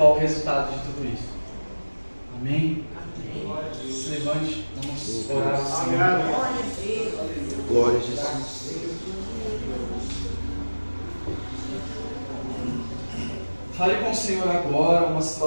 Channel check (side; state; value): both; inverted; correlation -1.00